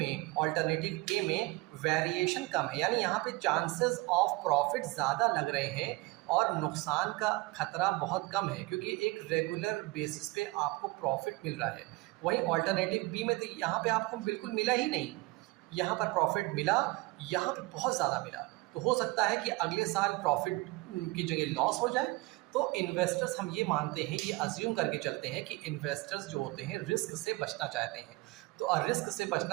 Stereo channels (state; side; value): quieter; left; 22.8 dB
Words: में वेरिएशन कम है, यानी यहाँ पे चांसेस ऑफ प्रॉफिट ज़्यादा लग रहे हैं और नुकसान का खतरा बहुत कम है, क्योंकि एक रेगुलर बेसिस पे आपको प्रॉफिट मिल रहा है। वहीं ऑल्टरनेटिव बी में तो यहाँ पे आपको बिल्कुल मिला ही नहीं, यहाँ पर प्रॉफिट मिला, यहाँ पे बहुत ज़्यादा मिला। तो हो सकता है कि अगले साल प्रॉफिट की जगह लॉस हो जाए। तो इन्वेस्टर्स, हम ये मानते हैं, ये अज्यूम करके चलते हैं कि इन्वेस्टर्स जो होते हैं रिस्क से बचना चाहते हैं। तो रिस्क से